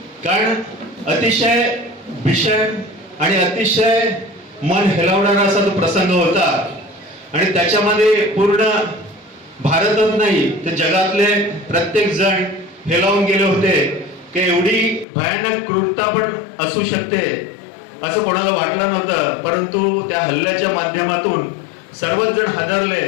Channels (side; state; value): right; drops out; at 15.1 s